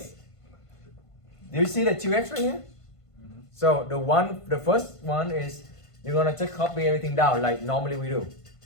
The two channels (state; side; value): late; right; 1.5 ms